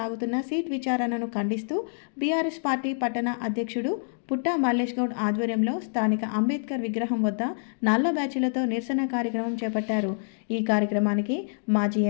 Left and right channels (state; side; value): silent; right; digital silence